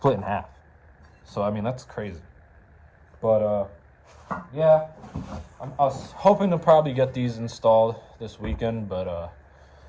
in half. So I mean, that's crazy. But yeah, I was hoping to probably get these installed this weekend, but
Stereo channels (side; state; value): both; identical; correlation 1.00